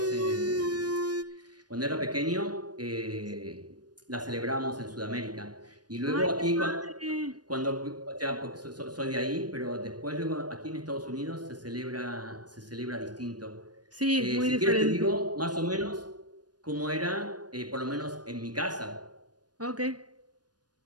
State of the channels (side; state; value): left; late; 0.69 ms